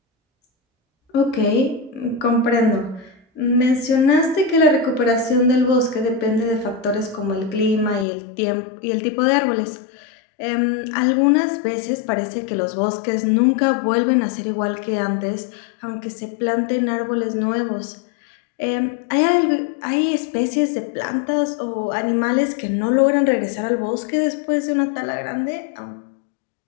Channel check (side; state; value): right; drops out; at 8.1 s